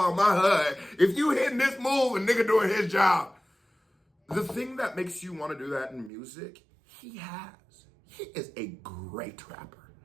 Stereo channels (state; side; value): drops out; left; at 6.1 s